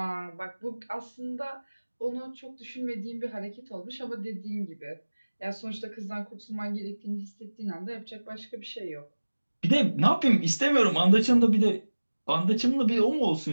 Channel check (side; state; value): both; inverted; correlation -1.00